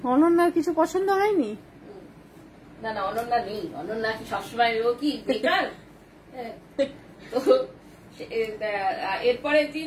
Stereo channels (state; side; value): identical; both; correlation 1.00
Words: অনন্যার কিছু পছন্দ হয়নি? না না, অনন্যা নেই। অনন্যা কি সবসময় ও কি বেকার? তো এরপরের